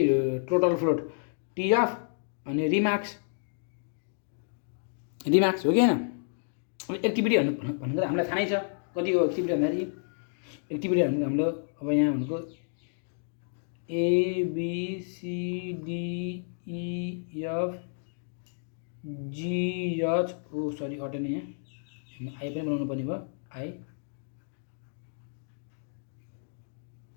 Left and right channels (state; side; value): silent; right; digital silence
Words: टोटल फ्लोट, TF अनि रिमार्क्स हो कि होइन। एक्टिभिटी भनेको हामीलाई थाहै छ कति हो एक्टिभिटी भन्दाखेरि। एक्टिभिटी भनेको हाम्रो अब यहाँ भनेको ABCDEFGH सरी अटेन यहाँ आई पनि बनाउनु पर्ने भयो। आई